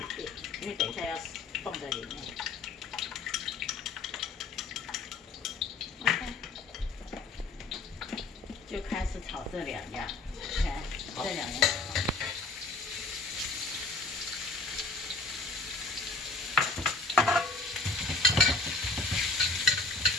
因为等一下要放在里面。OK， 就开始炒这两样，看这两样。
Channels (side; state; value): right; quieter; 3.7 dB